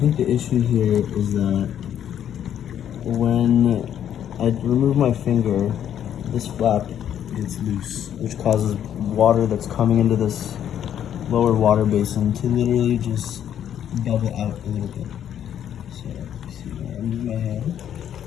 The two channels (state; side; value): quieter; right; 9.9 dB